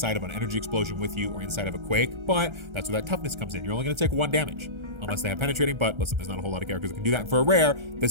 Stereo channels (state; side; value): late; left; 1.3 ms